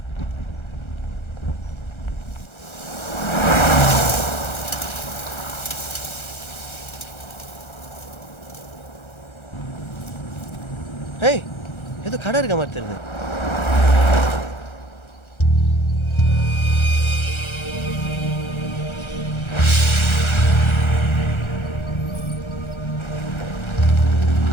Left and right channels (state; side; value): late; right; 1.3 ms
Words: ஏய் ஏதோ கடை இருக்க மாதிரி தெரியுது.